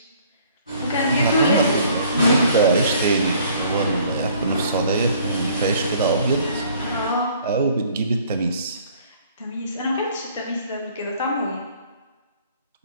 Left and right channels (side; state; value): both; inverted; correlation -0.57